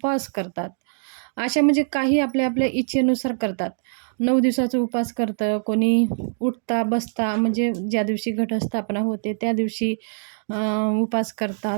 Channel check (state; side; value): silent; left; digital silence